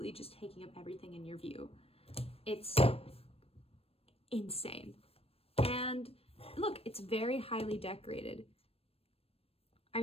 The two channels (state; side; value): late; right; 0.28 ms